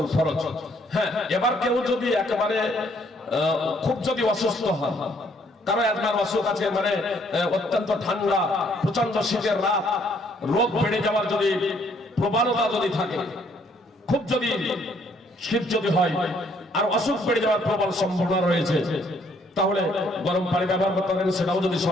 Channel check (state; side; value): normal; both; correlation 0.66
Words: ফরজ। হ্যাঁ, এবার কেউ যদি একেবারে খুব যদি অসুস্থ হন, কারো একবার অসুখ আছে, মানে অত্যন্ত ঠান্ডা, প্রচন্ড শীতের রাত, রোগ বেড়ে যাওয়ার যদি প্রবণতা যদি থাকে, খুব যদি শীত যদি হয় আর অসুখ বেড়ে যাওয়ার প্রবল সম্ভাবনা রয়েছে, তাহলে গরম পানি ব্যবহার করতে পারেন। সেটাও যদি